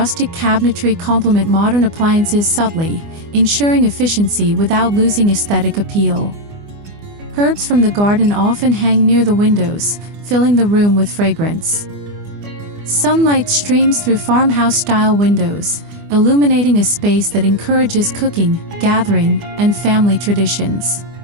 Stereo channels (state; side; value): late; left; 24 ms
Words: cabinetry complement modern appliances subtly, ensuring efficiency without losing aesthetic appeal. Herbs from the garden often hang near the windows, filling the room with fragrance. Sunlight streams through farmhouse-style windows, illuminating a space that encourages cooking, gathering, and family traditions.